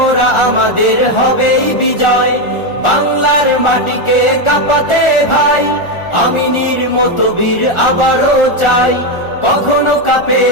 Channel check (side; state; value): right; late; 1.4 ms